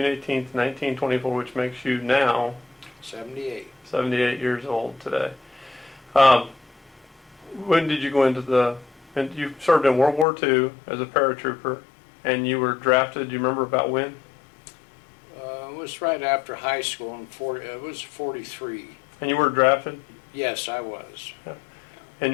18th, 1924, which makes you now 78. 78 years old today. When did you go into and you served in World War II as a paratrooper, and you were drafted, do you remember about when? It was right after high school, it was 43. And you were drafted? Yes, I was. Yeah. And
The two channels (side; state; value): right; drops out; at 10.2 s